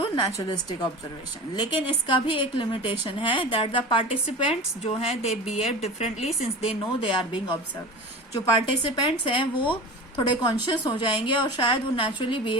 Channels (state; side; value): normal; both; correlation 0.33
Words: naturalistic observation. लेकिन इसका भी एक लिमिटेशन है, दैट द पार्टिसिपेंट्स जो हैं they behave differently since they know they are being observe. जो पार्टिसिपेंट्स हैं वो थोड़े कॉन्शियस हो जाएंगे और शायद वो नेचुरली